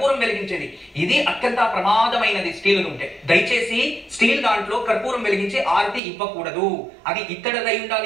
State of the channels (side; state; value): left; drops out; at 6.0 s